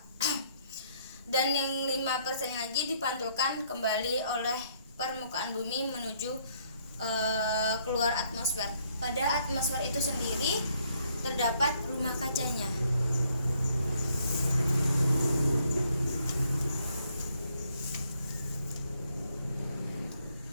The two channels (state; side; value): inverted; both; correlation -0.69